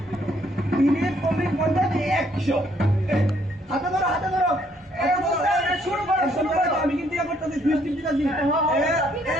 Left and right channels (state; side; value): normal; both; correlation 0.68